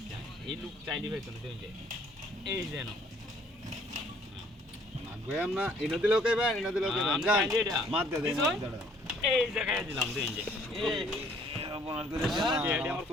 এই লোক চাইলি হইতো না দেখুন যে এই যে নো নাগয়াম না ইনো দিলেও কইবা ইনো দিলেও কইবা আমি যা চাইলি এটা। মাত দে দে দিছুন? দাঁড়া এই জায়গায় দিলাম দেখুন যে এই আপনার করে এটা আমার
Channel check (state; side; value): normal; both; correlation 0.60